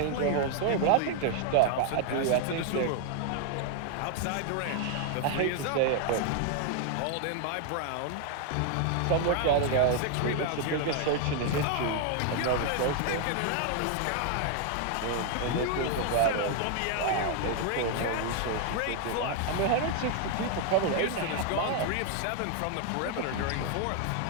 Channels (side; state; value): both; different; correlation 0.00